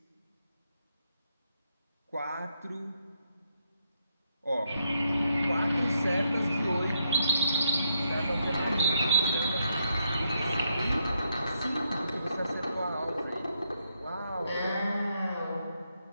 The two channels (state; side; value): inverted; both; correlation -0.79